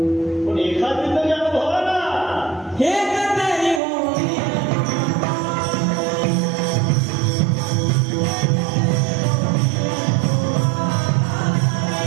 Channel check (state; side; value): drops out; left; at 3.8 s